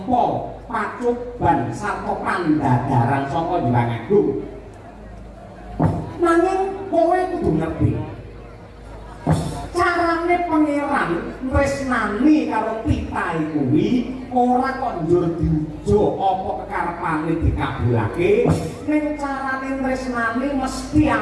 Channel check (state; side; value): identical; both; correlation 1.00